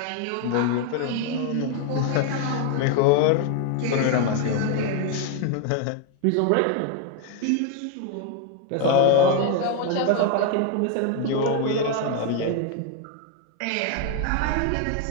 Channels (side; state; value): both; different; correlation 0.01